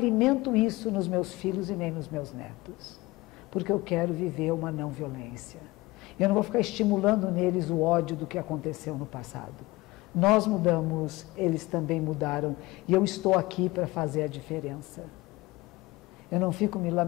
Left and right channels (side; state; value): right; quieter; 21.0 dB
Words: isso nos meus filhos e nem nos meus netos, porque eu quero viver uma não violência. Eu não vou ficar estimulando neles o ódio do que aconteceu no passado. Nós mudamos, eles também mudaram, e eu estou aqui para fazer a diferença. Eu não fico me